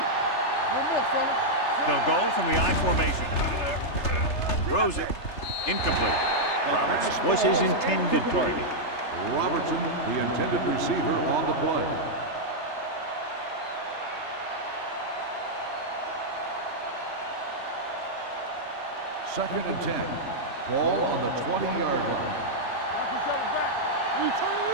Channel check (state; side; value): late; right; 3.3 ms